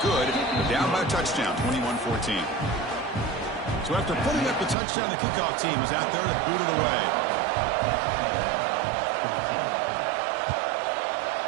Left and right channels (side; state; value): left; drops out; at 4.8 s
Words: good. They're down by a touchdown, 21-14. So after putting up the touchdown, the kickoff team is out there to boot it away.